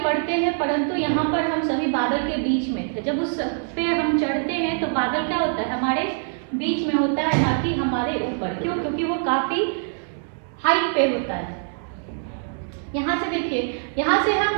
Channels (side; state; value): left; silent; 63 dB below the other